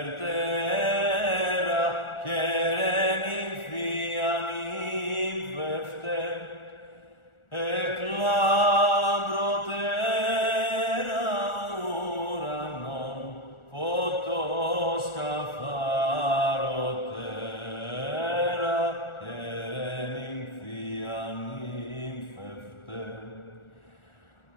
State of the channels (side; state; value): right; late; 1.4 ms